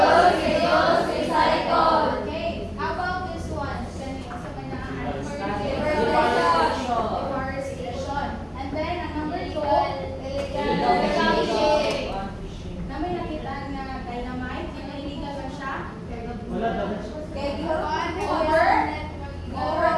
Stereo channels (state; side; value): identical; both; correlation 1.00